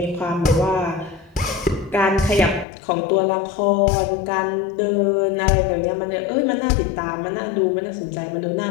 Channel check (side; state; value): right; drops out; at 2.7 s